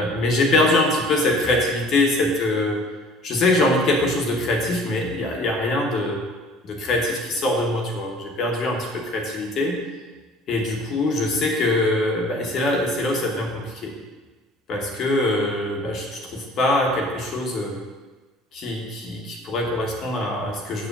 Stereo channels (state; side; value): normal; both; correlation 0.49